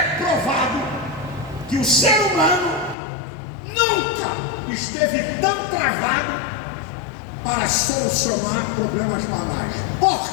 provado que o ser humano nunca esteve tão travado para solucionar problemas banais.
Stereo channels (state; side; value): drops out; right; at 3.0 s